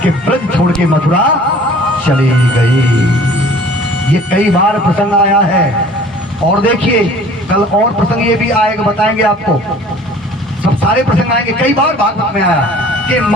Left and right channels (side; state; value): both; normal; correlation 0.49